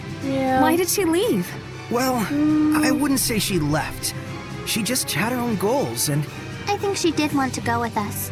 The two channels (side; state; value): both; identical; correlation 1.00